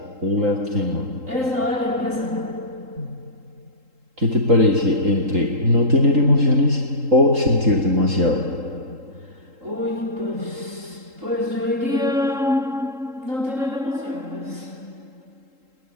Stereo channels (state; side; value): late; left; 3.8 ms